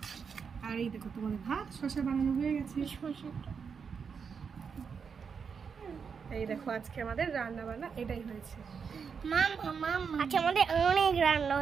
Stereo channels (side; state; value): left; quieter; 6.1 dB